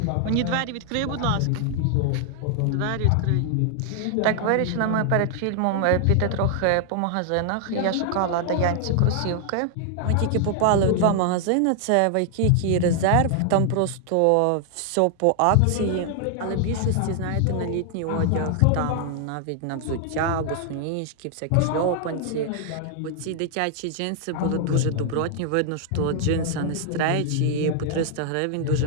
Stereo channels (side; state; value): both; different; correlation 0.00